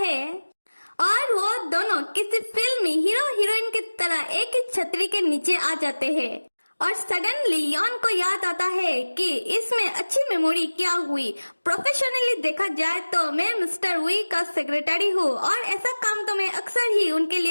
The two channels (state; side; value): inverted; both; correlation -1.00